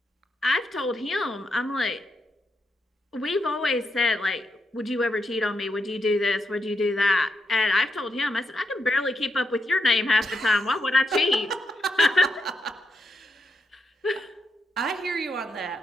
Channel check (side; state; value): both; normal; correlation 0.83